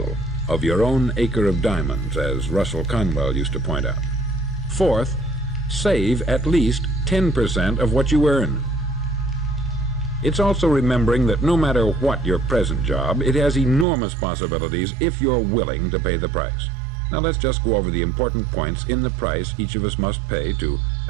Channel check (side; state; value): left; drops out; at 13.9 s